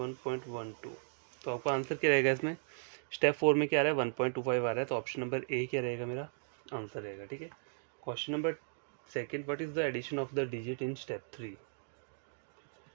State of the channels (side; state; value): left; silent; digital silence